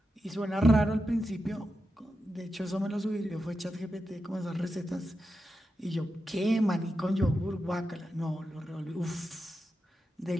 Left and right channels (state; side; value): normal; both; correlation 0.88